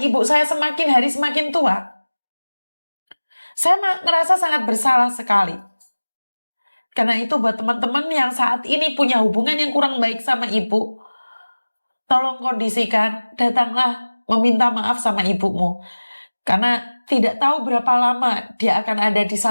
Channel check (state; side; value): inverted; both; correlation -1.00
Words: ibu saya semakin hari semakin tua, saya merasa sangat bersalah sekali. Karena itu buat teman-teman yang saat ini punya hubungan yang kurang baik sama ibu, tolong kondisikan, datanglah meminta maaf sama ibumu. Karena tidak tahu berapa lama dia akan ada di